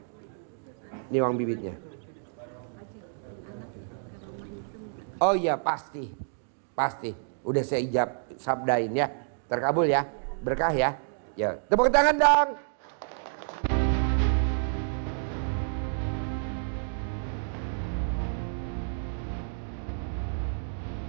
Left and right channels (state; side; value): silent; left; digital silence